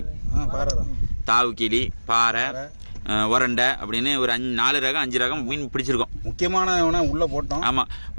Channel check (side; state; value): both; inverted; correlation -1.00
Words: தாவு கிளி, பாறை, உரண்டை அப்படின்னு ஒரு 4 ரகம் 5 ரகம் மீன் பிடிச்சிருக்கோம். முக்கியமான உள்ள போட்டோம். ஆமா,